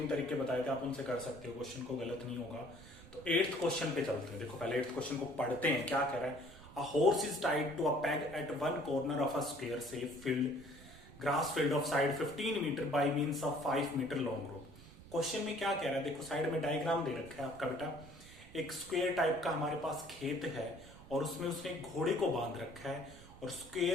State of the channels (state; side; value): noise; right; rumble, 18 dB below the sound